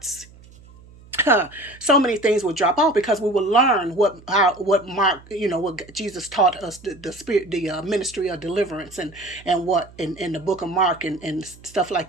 so many things will drop off, because we will learn what Mark, what Jesus taught us, the spirit, the ministry of deliverance, and what in the book of Mark, and stuff like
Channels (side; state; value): right; noise; hum, 23 dB below the sound